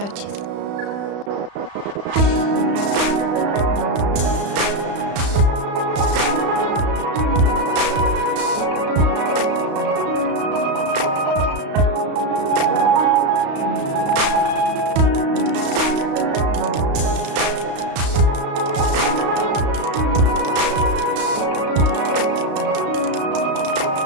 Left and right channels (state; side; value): late; left; 35 ms